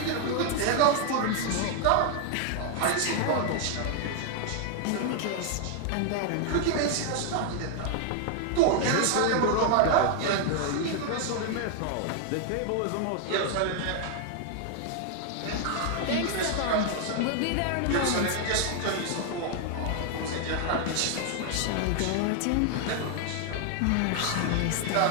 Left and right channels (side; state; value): both; different; correlation 0.00